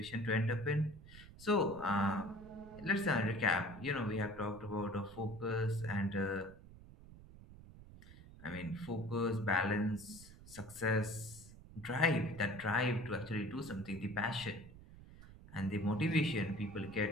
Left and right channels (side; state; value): right; noise; rumble, 18 dB below the sound